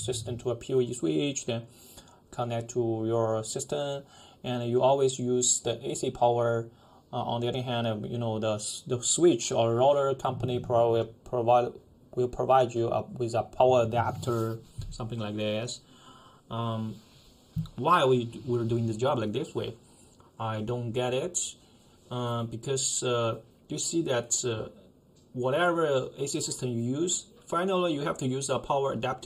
to a PoE switch, then connect to your system, and you always use the AC power. On the other hand, the switch or router company will provide you with a power adapter, something like this. Why we're doing this job like this way? I don't get it, because you see that whatever AC system you use, finally you have to use a power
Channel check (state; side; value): identical; both; correlation 1.00